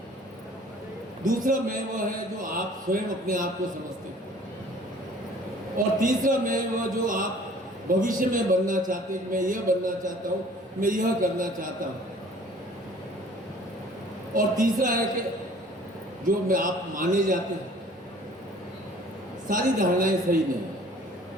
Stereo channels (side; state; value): both; normal; correlation 0.52